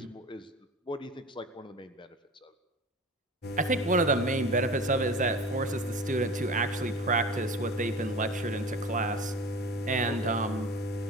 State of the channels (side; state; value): both; normal; correlation 0.36